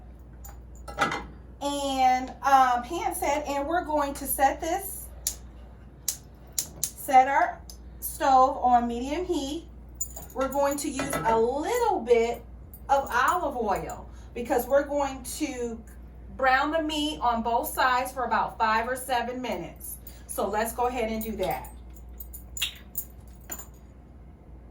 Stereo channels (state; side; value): identical; both; correlation 1.00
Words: and pan set, and we're going to set our stove on medium heat. We're going to use a little bit of olive oil because we're going to brown the meat on both sides for about 5 or 7 minutes. So let's go ahead and do that.